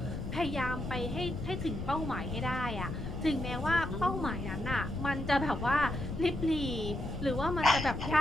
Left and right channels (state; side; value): noise; left; rumble, 6 dB below the sound